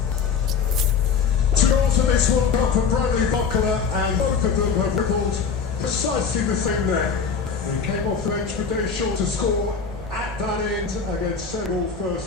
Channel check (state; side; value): quieter; right; 5.9 dB